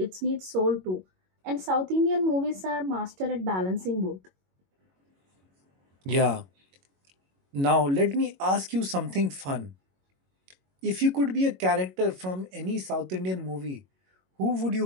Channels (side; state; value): left; late; 22 ms